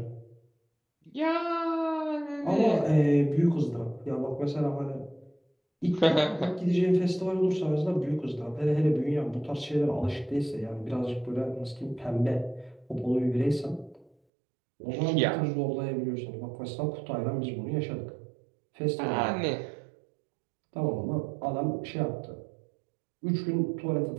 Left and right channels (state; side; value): drops out; left; at 14.2 s